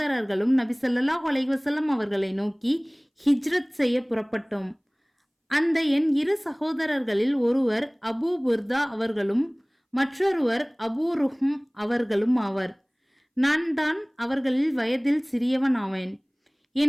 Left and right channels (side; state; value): both; identical; correlation 1.00